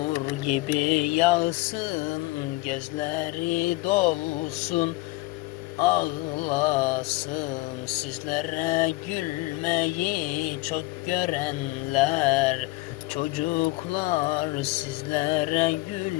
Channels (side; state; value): right; quieter; 21.0 dB